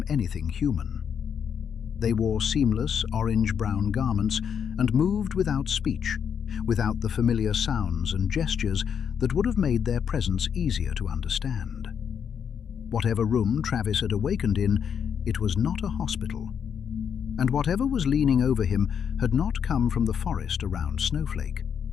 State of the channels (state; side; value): quieter; right; 7.6 dB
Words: anything human. They wore seamless orange-brown garments and moved without speech, without the familiar sounds and gestures that would have made their presence easier to understand. Whatever room Travis had awakened in, it was not a hospital. And whatever was leaning over him had not come from the forest around Snowflake.